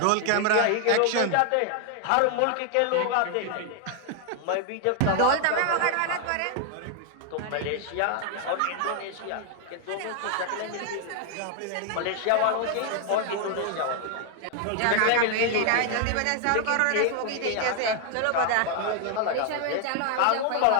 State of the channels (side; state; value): both; different; correlation 0.00